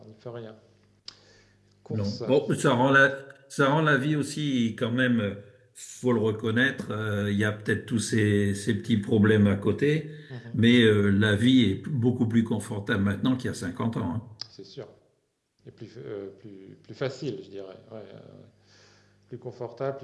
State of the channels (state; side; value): identical; both; correlation 1.00